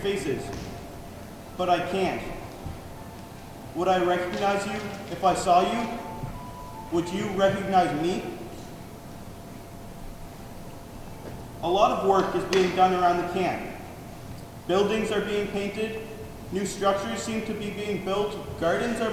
but I can't. Would I recognize you if I saw you? Would you recognize me? A lot of work is being done around the camp. Buildings are being painted, new structures seem to be being built, gardens are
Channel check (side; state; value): both; identical; correlation 1.00